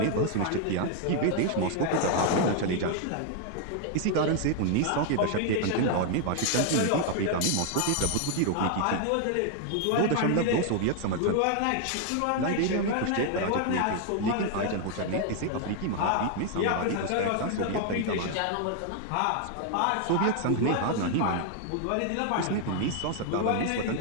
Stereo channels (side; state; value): both; different; correlation 0.00